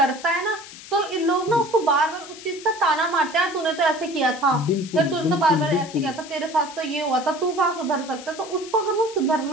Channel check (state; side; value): noise; left; hiss, 16 dB below the sound